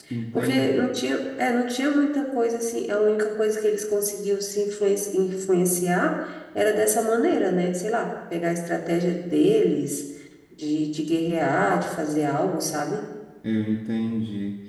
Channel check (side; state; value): both; identical; correlation 1.00